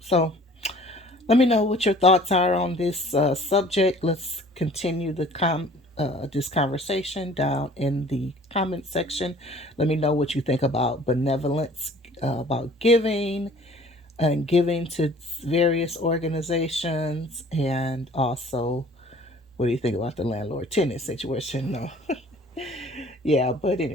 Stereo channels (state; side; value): normal; both; correlation 0.51